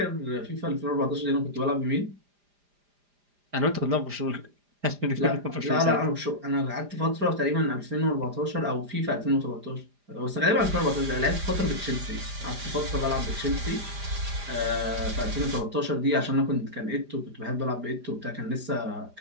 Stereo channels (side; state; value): left; late; 4.9 ms